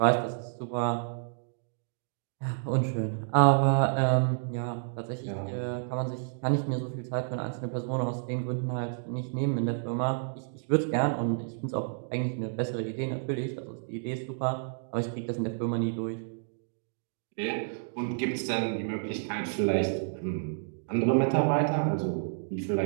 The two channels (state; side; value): silent; left; digital silence